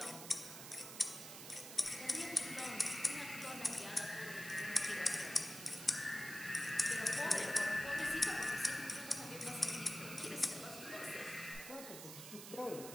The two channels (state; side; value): noise; right; hiss, 10 dB below the sound